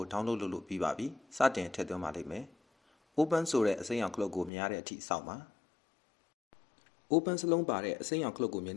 download လုပ်လို့ပြီးပါပြီစတင်ထည့်သွင်းပါလိမ့်မယ် Open ဆိုတဲ့အစိမ်းရောင်ခလုတ်ကိုမြင်ရတဲ့အထိစောင့်ပါ Open စလုံးပါတဲ့အစိမ်းရောင်ခလုတ်ကိုမြင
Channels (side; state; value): right; drops out; at 4.5 s